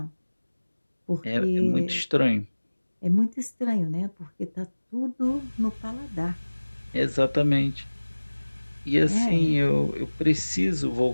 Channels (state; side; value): inverted; both; correlation -1.00